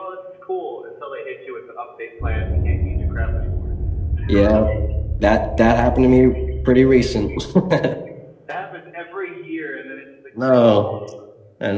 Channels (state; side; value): identical; both; correlation 1.00